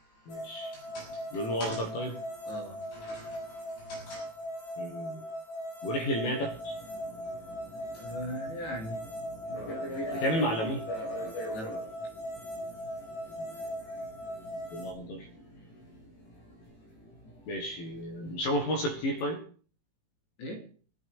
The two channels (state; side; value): late; right; 18 ms